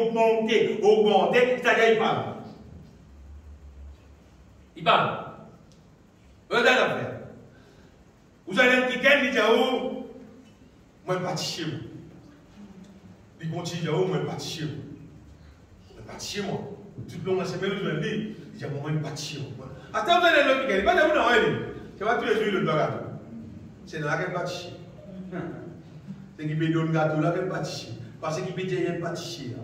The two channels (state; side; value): identical; both; correlation 1.00